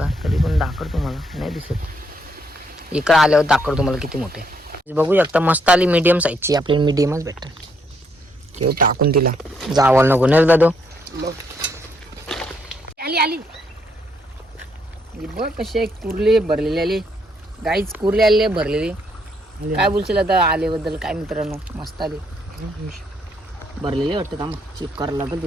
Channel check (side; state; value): both; normal; correlation 0.73